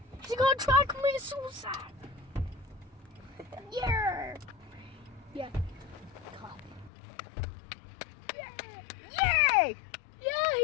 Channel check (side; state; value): right; drops out; at 6.9 s